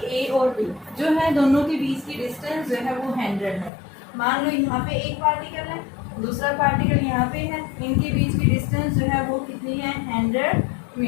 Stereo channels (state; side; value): drops out; right; at 3.7 s